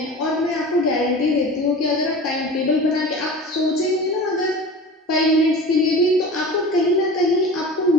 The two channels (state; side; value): normal; both; correlation 0.35